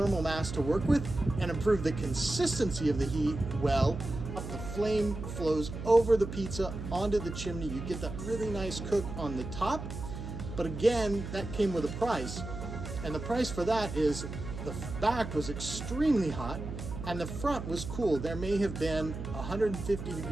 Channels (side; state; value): right; noise; hum, 8 dB below the sound